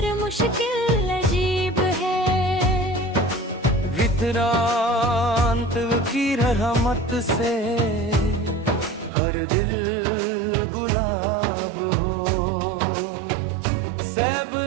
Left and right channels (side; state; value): left; drops out; at 9.1 s